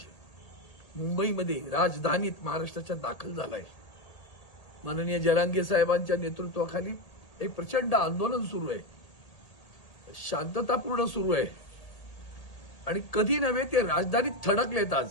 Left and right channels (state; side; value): late; right; 1.7 ms